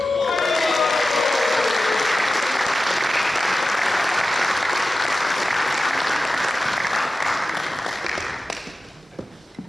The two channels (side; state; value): both; normal; correlation 0.94